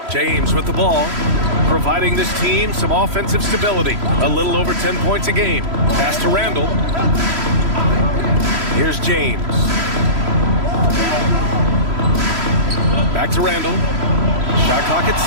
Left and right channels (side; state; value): left; late; 3.0 ms